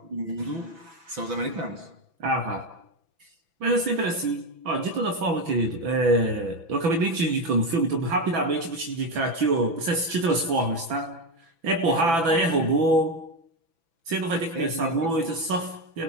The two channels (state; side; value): late; left; 6.0 ms